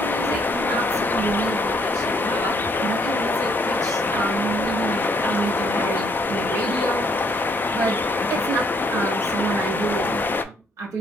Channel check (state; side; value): normal; both; correlation 0.68